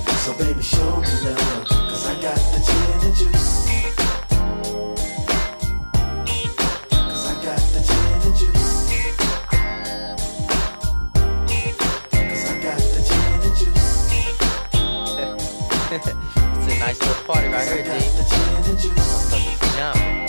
So baby, show me love, 'cause I got the gin and juice. juice.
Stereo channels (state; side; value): inverted; both; correlation -1.00